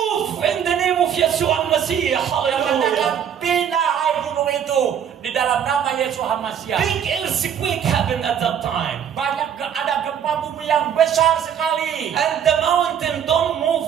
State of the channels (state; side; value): quieter; left; 8.6 dB